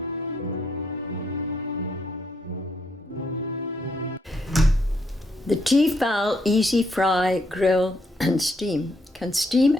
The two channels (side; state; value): both; normal; correlation 0.74